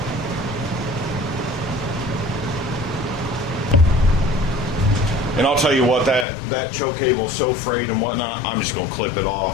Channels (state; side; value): drops out; right; at 6.2 s